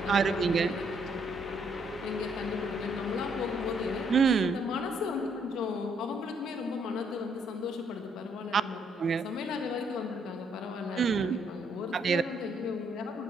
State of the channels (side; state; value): both; normal; correlation 0.70